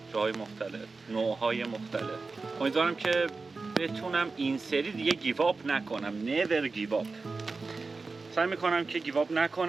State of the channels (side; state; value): left; quieter; 4.0 dB